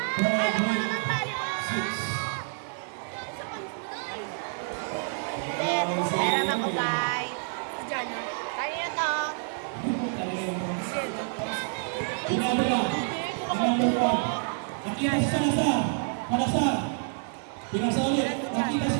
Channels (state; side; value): silent; left; 59 dB below the other